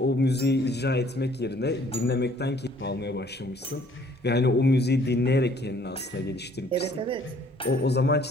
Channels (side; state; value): both; normal; correlation 0.59